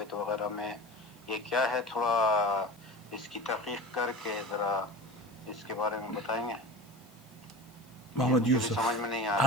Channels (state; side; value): noise; left; hiss, 27 dB below the sound